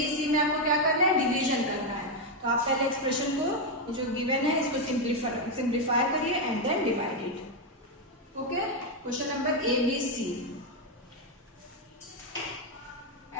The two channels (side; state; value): both; normal; correlation 0.04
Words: सी में आपको क्या करना है, डिवीजन करना है। तो आप पहले एक्सप्रेशन को जो गिवन है इसको सिंप्लीफाई करिए and then divide it. Okay, question number A B C